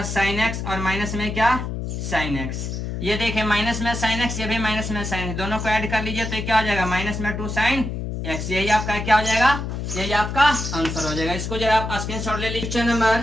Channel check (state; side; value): noise; left; hum, 4 dB below the sound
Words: साइन एक्स और माइनस में क्या साइन एक्स, ये देखिए माइनस में साइन एक्स, ये भी माइनस में साइन, दोनों को ऐड कर लीजिए तो ये क्या हो जाएगा माइनस में 2 साइन एक्स, यही आपका क्या हो जाएगा, यही आपका आंसर हो जाएगा। इसको जरा आप स्क्रीनशॉट ले लीजिए। नंबर